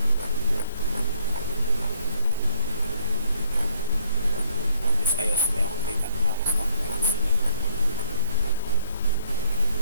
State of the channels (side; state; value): both; inverted; correlation -0.65